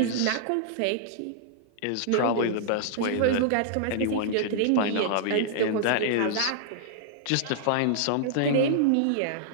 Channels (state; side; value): different; both; correlation -0.01